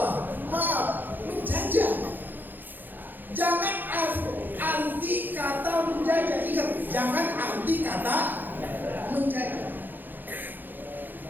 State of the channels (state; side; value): late; left; 0.092 ms